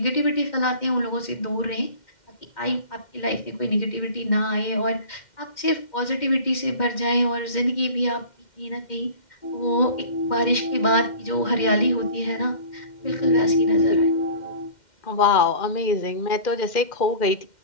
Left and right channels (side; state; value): right; late; 2.1 ms